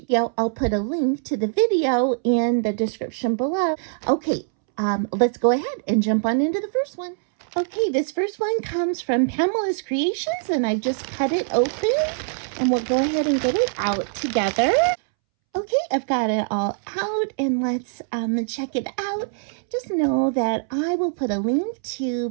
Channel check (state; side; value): silent; left; 63 dB below the other